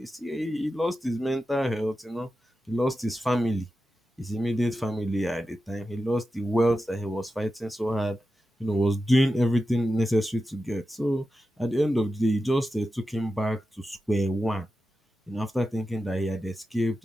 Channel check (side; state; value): both; normal; correlation 0.91